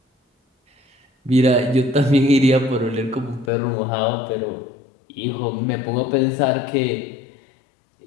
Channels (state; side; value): drops out; right; at 3.5 s